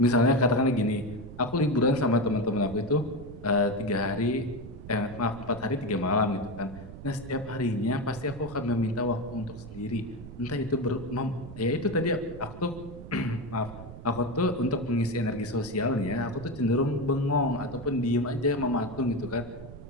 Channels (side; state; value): right; noise; rumble, 13 dB below the sound